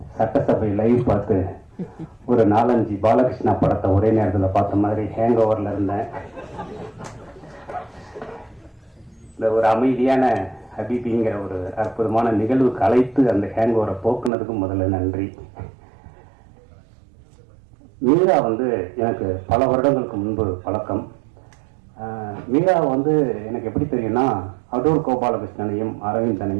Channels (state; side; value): drops out; left; at 14.3 s